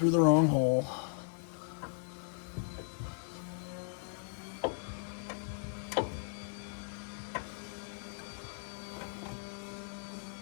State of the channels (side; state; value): right; silent; digital silence